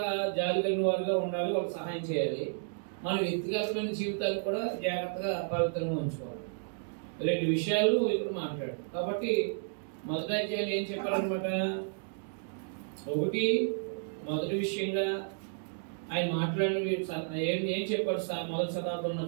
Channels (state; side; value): silent; left; digital silence